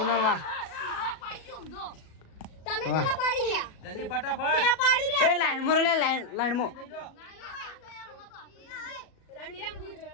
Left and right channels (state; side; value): late; right; 37 ms